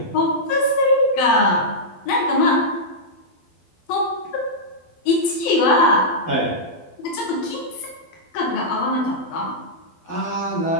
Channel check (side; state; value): right; late; 12 ms